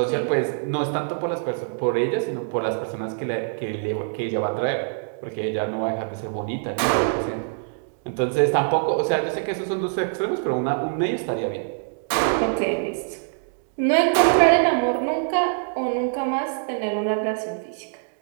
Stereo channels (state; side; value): silent; left; digital silence